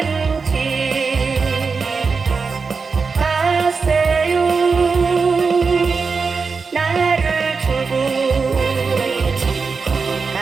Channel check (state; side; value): quieter; left; 4.9 dB